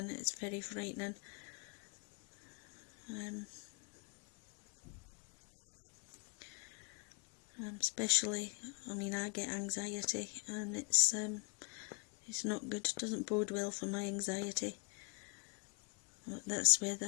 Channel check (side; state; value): right; quieter; 35.1 dB